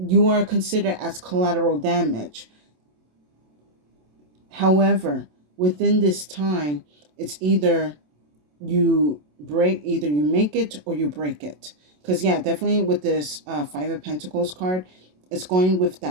are considered as collateral damage. However, within this time, it's either either you make it or you break it. Because yeah, definitely with this Five of Pentacles card, it's going with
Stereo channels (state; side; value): late; left; 27 ms